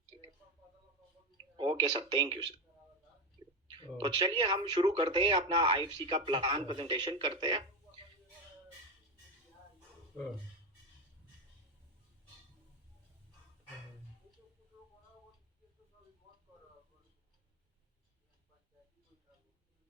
ठीक है। Okay sir, thank you sir. तो और चलिए हम शुरू करते हैं, अपना आईएफसी का प्लान प्रेजेंटेशन करते हैं। हाँ,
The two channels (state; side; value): normal; both; correlation 0.15